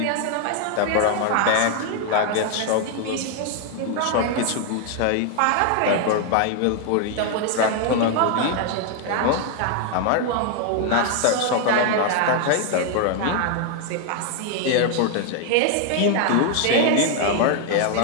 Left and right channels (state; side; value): different; both; correlation 0.00